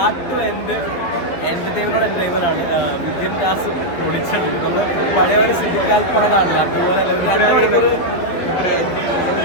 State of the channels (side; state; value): right; late; 12 ms